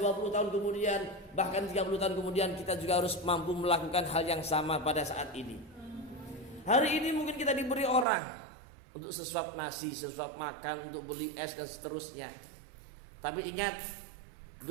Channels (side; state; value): left; drops out; at 8.1 s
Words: tahun kemudian, bahkan 30 tahun kemudian, kita juga harus mampu melakukan hal yang sama pada saat ini. Hari ini mungkin kita diberi orang untuk sesuap nasi, sesuap makan, untuk beli es dan seterusnya. Tapi ingat,